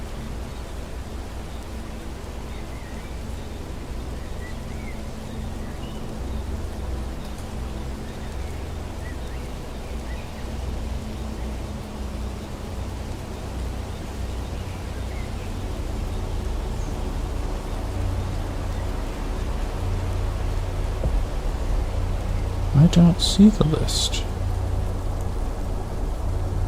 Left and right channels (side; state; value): both; identical; correlation 1.00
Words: I don't see the list.